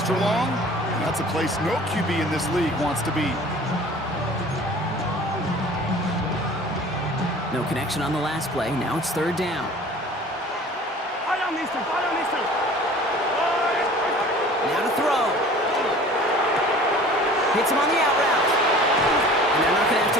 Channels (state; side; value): normal; both; correlation 0.45